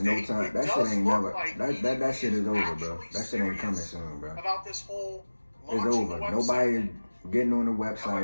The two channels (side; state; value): both; inverted; correlation -1.00